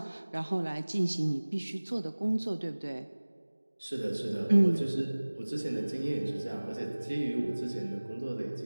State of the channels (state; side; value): inverted; both; correlation -1.00